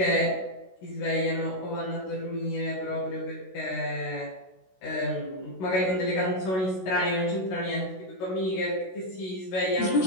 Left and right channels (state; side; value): late; right; 16 ms